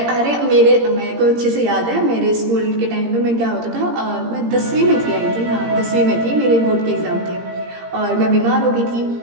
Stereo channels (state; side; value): late; left; 17 ms